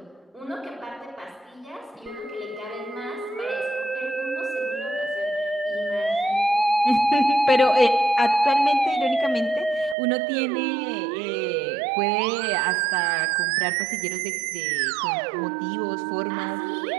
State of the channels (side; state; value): left; drops out; at 10.0 s